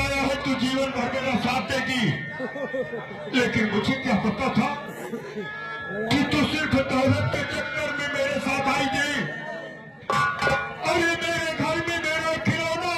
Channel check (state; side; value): identical; both; correlation 1.00